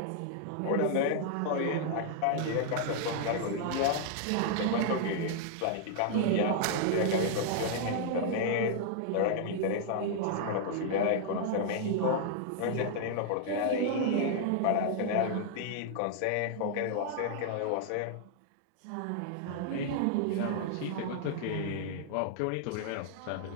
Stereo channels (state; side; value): different; both; correlation -0.01